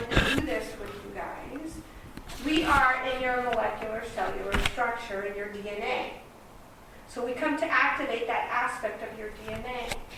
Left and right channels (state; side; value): identical; both; correlation 1.00